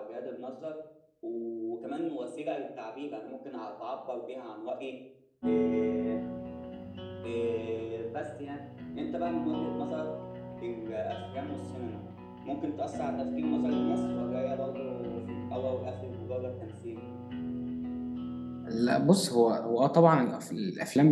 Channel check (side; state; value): both; identical; correlation 1.00